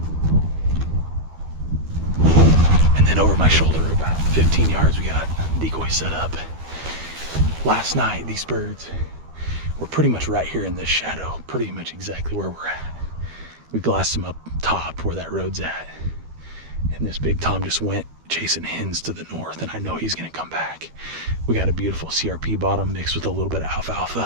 And then over my shoulder about 15 yards we got decoy set up. Last night these birds were pretty much right here in this shadow, pretty much exactly where we're at. We glassed them up top where that road's at, and this big tom just went chasing hens to the north, and I know he's gonna come back. We got a beautiful CRP bottom mixed with a little bit of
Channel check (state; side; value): late; left; 12 ms